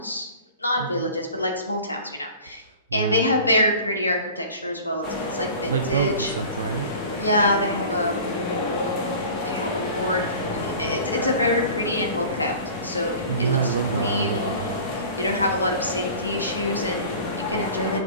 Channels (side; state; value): both; inverted; correlation -0.40